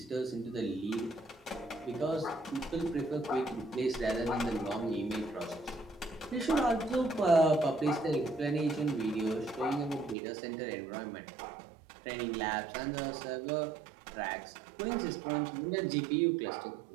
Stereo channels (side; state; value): left; drops out; at 10.2 s